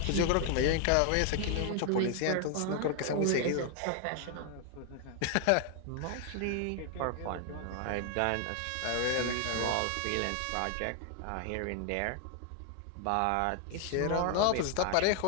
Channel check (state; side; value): different; both; correlation 0.00